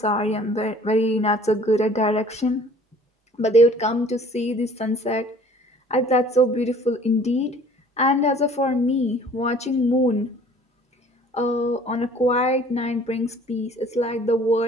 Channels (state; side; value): normal; both; correlation 0.52